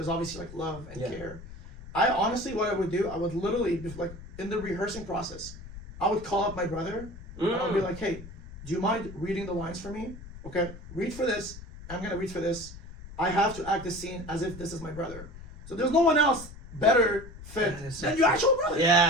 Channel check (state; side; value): noise; left; rumble, 15 dB below the sound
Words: obviously like love and care. I honestly, what I would do, I would literally, like in the rehearsing process, I would call up my brother and I would be like, hey, do you mind reading the lines for me? Okay, read for this. I'm gonna read for this. I have to act this scene as if this is my brother. So there's no one else better fit than your actual brother.